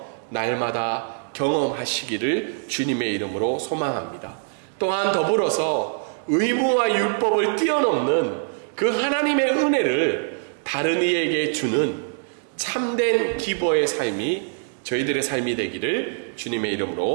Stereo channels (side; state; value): left; silent; digital silence